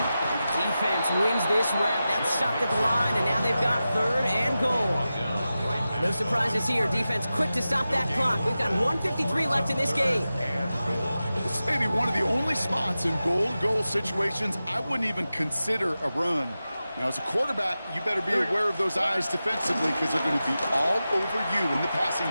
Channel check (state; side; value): inverted; both; correlation -0.93